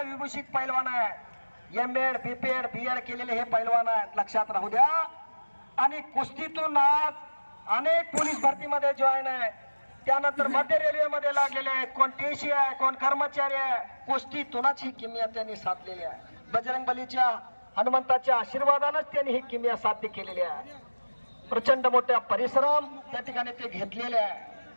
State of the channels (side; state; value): both; inverted; correlation -1.00